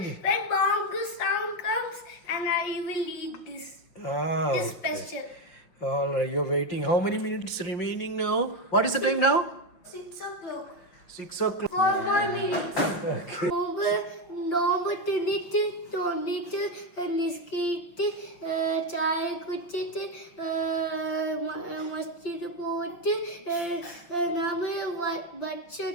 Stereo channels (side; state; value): right; late; 5.8 ms